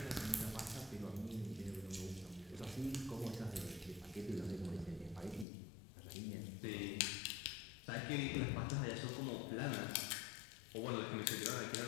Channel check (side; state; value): right; drops out; at 5.5 s